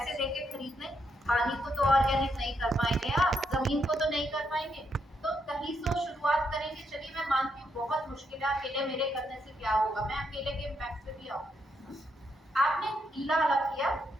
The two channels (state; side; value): normal; both; correlation 0.78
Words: देके खरीद लें, पानी को तो ऑर्गेनिक नहीं कर पाएंगे, आप जमीन को तो नहीं कर पाएंगे, तो कहीं से शुरुआत करेंगे। चलिए मैं मानती हूँ बहुत मुश्किल है, अकेले मेरे करने से क्या होगा, मैं अकेले के इम्पैक्ट पे भी आऊँ। आपने गीला अलग किया,